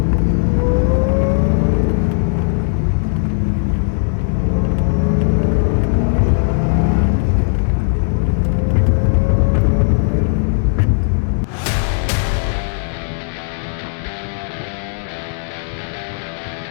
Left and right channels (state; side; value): silent; right; 67 dB below the other